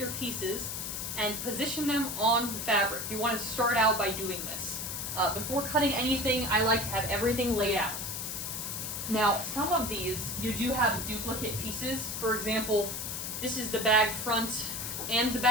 pieces and position them on the fabric. You want to start out by doing this. Before cutting anything, I like to have everything laid out. Now, some of these, you do have duplicate pieces. For example, this is the bag front and the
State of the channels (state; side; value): noise; left; hiss, 4 dB below the sound